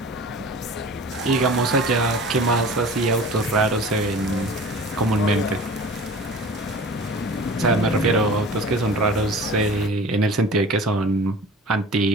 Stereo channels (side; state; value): both; normal; correlation 0.41